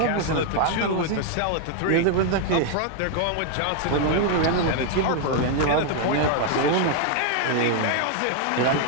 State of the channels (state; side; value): different; both; correlation 0.00